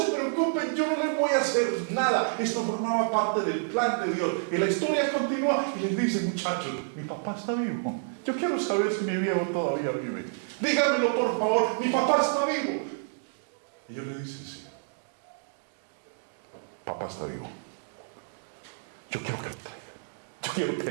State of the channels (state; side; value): silent; left; digital silence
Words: preocupen, yo no les voy a hacer nada. Esto formaba parte del plan de Dios. Y la historia continúa y les dice, muchachos, mi papá está vivo. Yo quiero saber si mi viejo todavía vive. Díganmelo por favor, mi papá está vivo. Y ellos le dicen, sí, papá está vivo. Yo quiero que lo traiga. Yo quiero